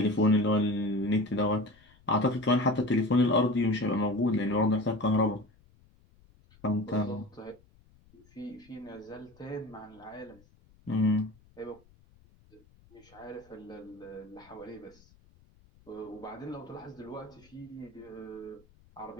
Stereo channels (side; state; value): left; noise; rumble, 28 dB below the sound